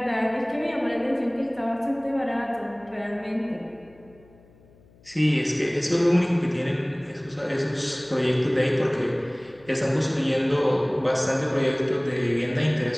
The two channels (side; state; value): left; noise; hum, 28 dB below the sound